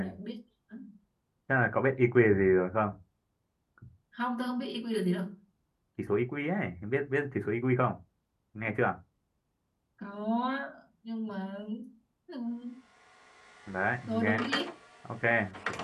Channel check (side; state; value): both; identical; correlation 1.00